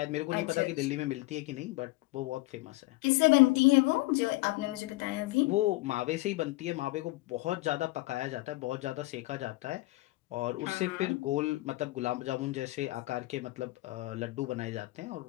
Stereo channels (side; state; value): right; quieter; 20.5 dB